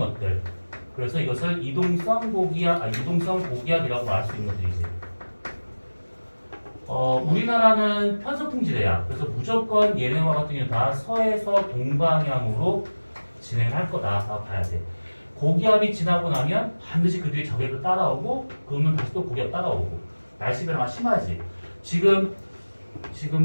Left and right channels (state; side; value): inverted; both; correlation -1.00